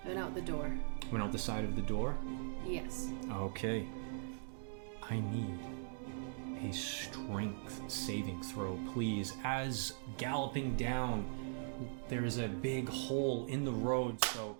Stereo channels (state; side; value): silent; left; digital silence